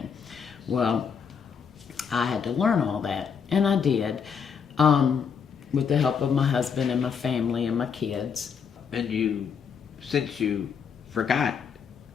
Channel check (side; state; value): right; quieter; 6.6 dB